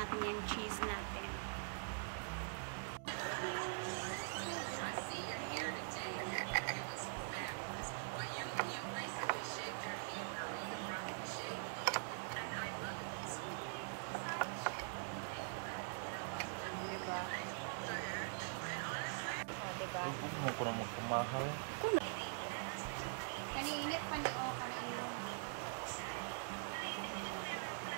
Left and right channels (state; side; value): silent; left; digital silence